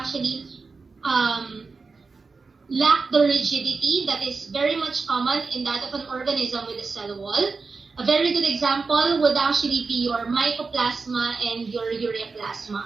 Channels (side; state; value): left; quieter; 4.4 dB